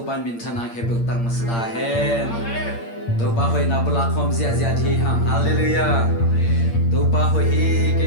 pan min thana khe buk tang masda hen tu pa hoi na bula khom zia zia thi hang hallelujah tu pa hoi hi ke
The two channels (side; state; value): right; late; 8.7 ms